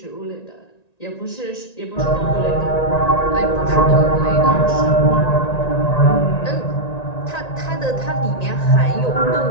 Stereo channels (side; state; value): right; late; 1.9 ms